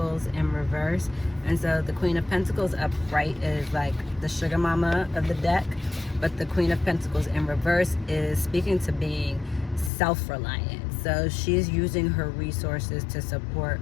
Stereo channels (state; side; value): drops out; right; at 9.9 s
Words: in reverse. And so the Queen of Pentacles upright is like the sugar mama of the deck, but the Queen of Pentacles in reverse is speaking to being self-reliant. So she's using her resources to support